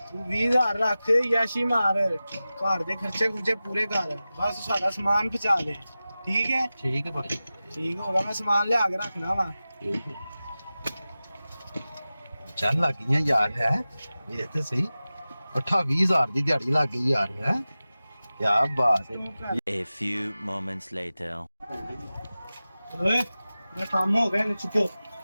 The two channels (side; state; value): both; inverted; correlation -0.96